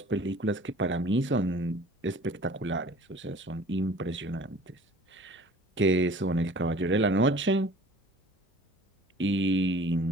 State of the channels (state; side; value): normal; both; correlation 0.48